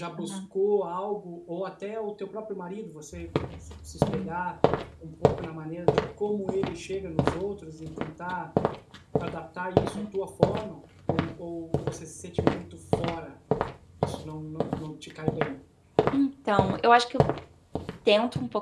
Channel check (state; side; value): identical; both; correlation 1.00